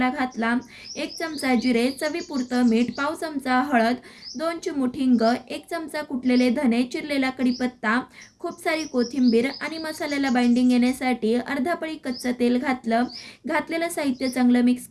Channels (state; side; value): identical; both; correlation 1.00